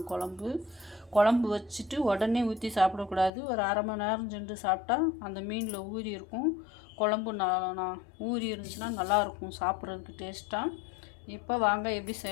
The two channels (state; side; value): drops out; right; at 3.3 s